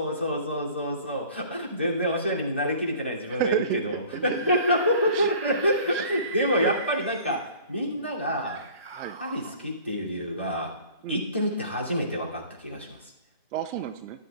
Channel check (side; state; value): both; inverted; correlation -0.48